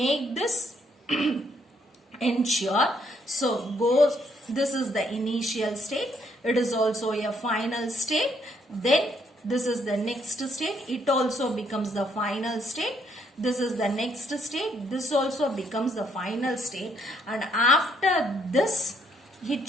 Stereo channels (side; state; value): both; normal; correlation 0.71